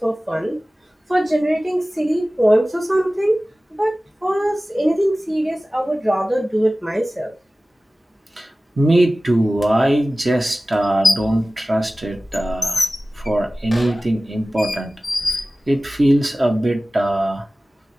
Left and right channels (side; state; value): both; normal; correlation 0.97